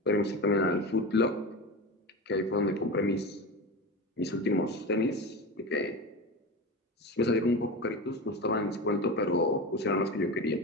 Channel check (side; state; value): both; normal; correlation 0.25